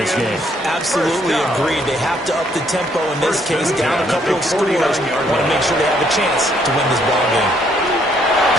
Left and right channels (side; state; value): both; normal; correlation 0.68